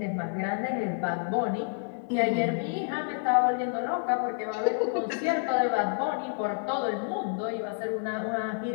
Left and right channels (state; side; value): silent; right; 59 dB below the other